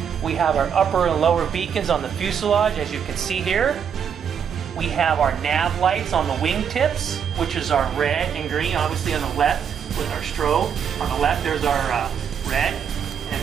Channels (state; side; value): quieter; left; 7.7 dB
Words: We have our upper and lower beacons on the fuselage, as you can see here. We have our nav lights on the wingtips, which is our red and green, obviously on the left with our strobe. On the left there's our red,